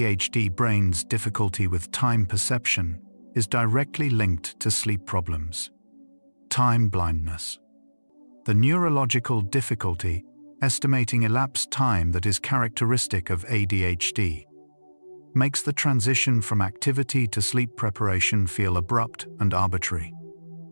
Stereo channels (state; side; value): inverted; both; correlation -1.00